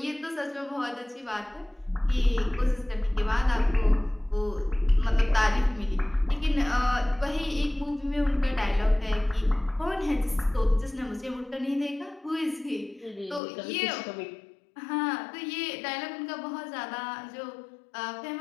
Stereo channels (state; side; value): drops out; right; at 13.4 s